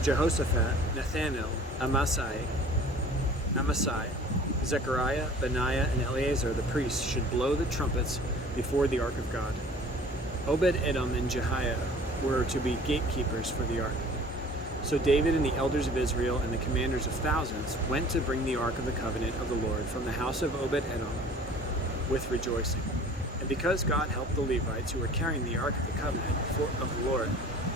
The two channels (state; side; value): normal; both; correlation 0.47